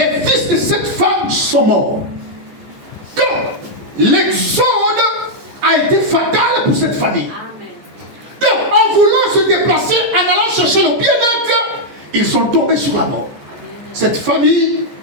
fils de cette femme sont morts. Donc, l'exode a été fatal pour cette famille. Donc, en voulant se déplacer, en allant chercher le bien-être, ils sont tombés sur la mort. Cette famille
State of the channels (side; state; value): left; late; 14 ms